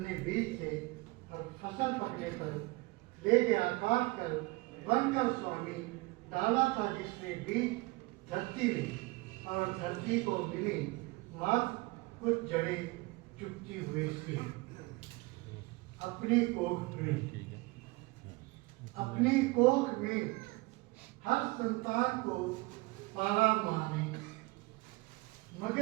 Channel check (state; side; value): quieter; left; 23.6 dB